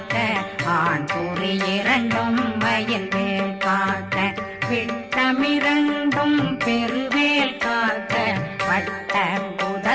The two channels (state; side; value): identical; both; correlation 1.00